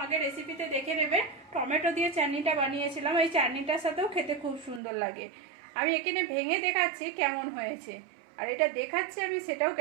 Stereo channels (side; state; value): left; drops out; at 4.8 s